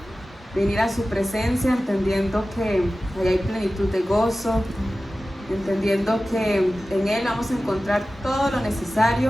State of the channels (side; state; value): both; normal; correlation 0.95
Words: venir a su presencia entendiendo que ahí hay plenitud de gozo, entendiendo que en Él vamos a encontrar todo lo